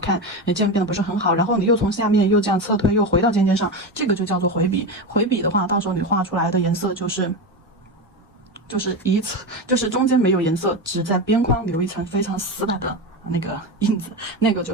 渐变得不是很好，然后你又从下面又这样侧推，又回到尖尖上，这个就叫做回笔。回笔的话，到时候你画出来的颜色就是中间没有颜色，只在边框留一层非常死板的那个印子，那个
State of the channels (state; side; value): normal; both; correlation 0.19